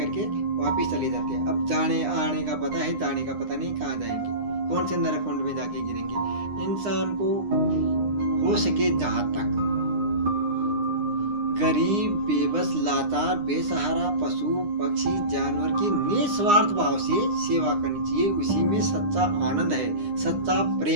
वापिस चले जाते हैं। अब जाने आने का पता है, जाने का पता नहीं कहाँ जाएंगे, कौन से नरकुंड में जाके गिरेंगे। इंसान को हो सके जहां तक गरीब, बेबस, लाचार, बेसहारा, पशु पक्षी, जानवर की निस्वार्थ भाव से सेवा करनी चाहिए। उसी में सच्चा आनंद है, सच्चा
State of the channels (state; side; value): late; left; 9.8 ms